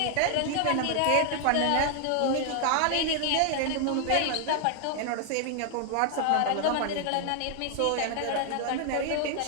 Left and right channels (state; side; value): different; both; correlation 0.00